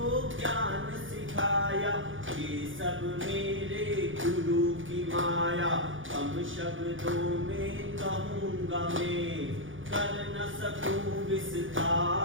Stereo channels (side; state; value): left; late; 0.57 ms